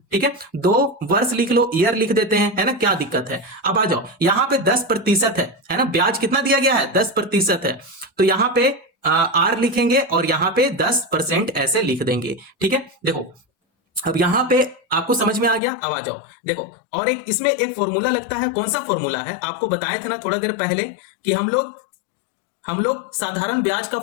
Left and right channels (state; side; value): drops out; right; at 15.6 s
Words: ठीक है, 2 वर्ष लिख लो, ईयर लिख देते हैं, है ना, क्या दिक्कत है। अब आ जाओ यहां पे 10% है ना, ब्याज कितना दिया गया है, 10% है, तो यहां पे आर लिखेंगे और यहां पे 10% ऐसे लिख देंगे। ठीक है, देखो अब यहां पे आपको समझ में आ गया। अब आ जाओ देखो, और एक इसमें एक फॉर्मूला लगता है, कौन सा फॉर्मूला है, आपको बताए थे ना थोड़ा देर पहले कि हम लोग साधारण ब्याज का